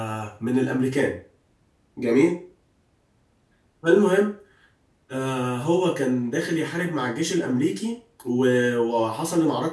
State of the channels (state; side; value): identical; both; correlation 1.00